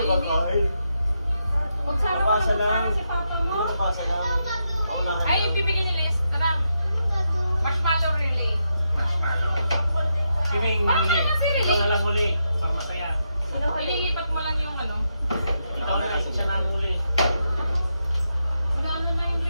ko kakainin. Kung sana mo Pasa lang. sana si papa mo. Hindi ko pasa lang. Ako na. Ay, yung bibigyan ni Les. Tara. Marshmallow relay. Kiming Parang huli. naman si Riley. Ikaw na lang huli. Para masaya. Ililipat mo lang yung ano. Ikaw na lang siya na huli. Gano'n na yung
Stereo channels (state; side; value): inverted; both; correlation -0.83